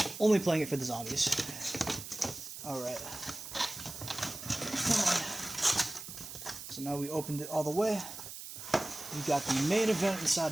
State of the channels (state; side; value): noise; right; hiss, 10 dB below the sound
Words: only playing it for the zombies. Alright. Come on. So now we opened it all the way. We got the main event inside